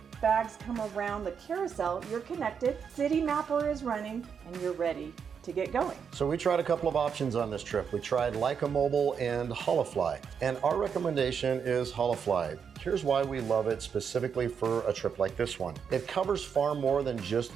bags come around the carousel, you're connected, City Mapper is running, and you're ready to get going. So we tried a couple of options on this trip. We tried Leica Mobile and Holofly, and our recommendation is Holofly. Here's why we love it specifically for a trip like this one. It covers far more than just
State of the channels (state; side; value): quieter; left; 6.9 dB